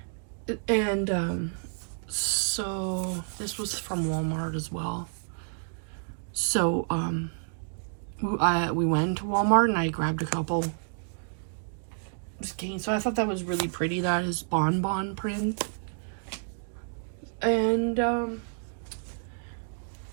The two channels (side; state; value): left; silent; digital silence